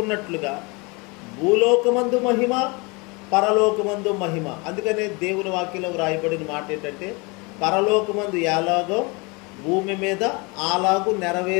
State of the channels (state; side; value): quieter; right; 28.3 dB